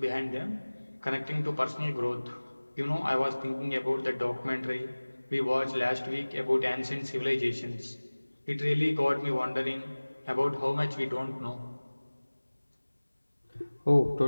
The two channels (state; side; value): inverted; both; correlation -1.00